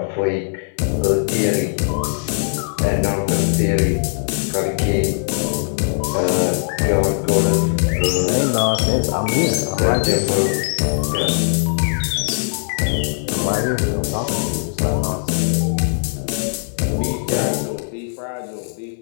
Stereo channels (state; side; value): silent; right; digital silence